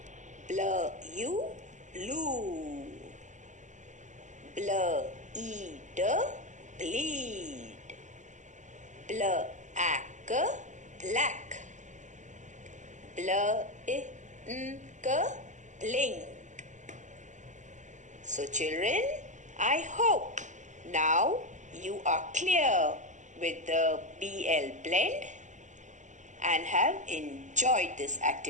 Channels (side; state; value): left; late; 0.35 ms